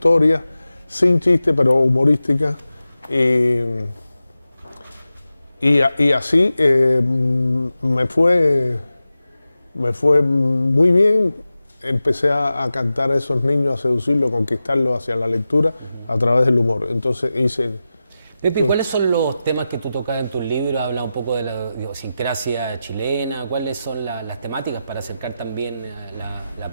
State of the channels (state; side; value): inverted; both; correlation -0.93